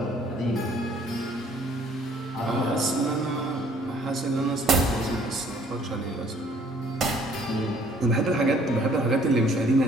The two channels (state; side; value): normal; both; correlation 0.59